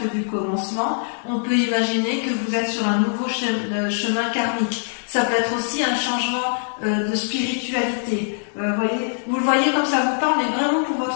du commencement, on peut imaginer que vous êtes sur un nouveau chemin karmique. Ça peut être aussi un changement de spiritualité. Vous le voyez comme ça vous parle, mais vraiment pour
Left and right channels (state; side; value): silent; right; digital silence